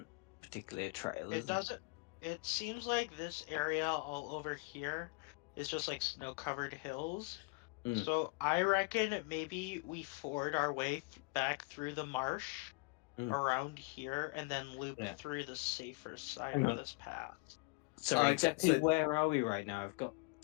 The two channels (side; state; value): right; quieter; 28.7 dB